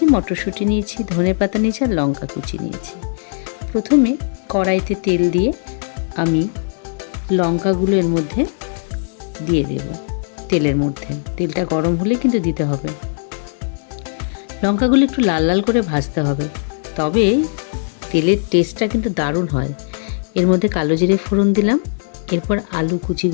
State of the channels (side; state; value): right; silent; 58 dB below the other